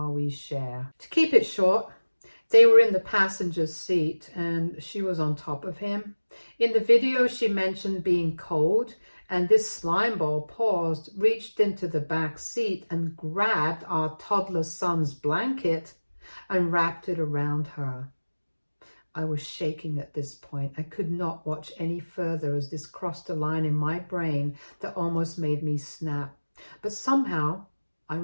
we share. To keep it short, they were in the passenger's seat and she was on top of him. In the video, she mentioned being cold, and this slimeball paused, reached into the back seat and grabbed our toddler son's blanket and wrapped it around her. I was shaking at this point. I could not watch any further as this crossed a line in my brain that almost made me snap. But somehow I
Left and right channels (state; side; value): inverted; both; correlation -1.00